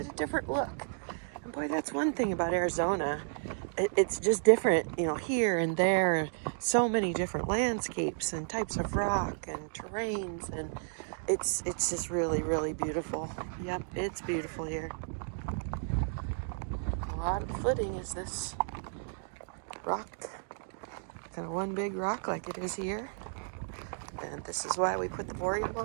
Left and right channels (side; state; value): left; silent; digital silence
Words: it a different look. And boy, that's one thing about Arizona. It's just different, you know, here and there. So many different landscapes and types of rock and terrains. And it's just really, really beautiful. Yep, it's beautiful here. A lot of footing is this rock. Kind of one big rock like it is here. And this is why we put the boreal